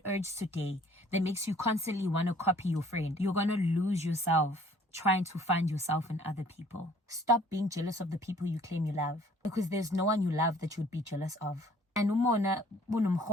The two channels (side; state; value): both; normal; correlation 0.56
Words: urge today that makes you constantly want to copy your friend. You're going to lose yourself trying to find yourself in other people. Stop being jealous of the people you claim you love, because there's no one you love that you would be jealous of. And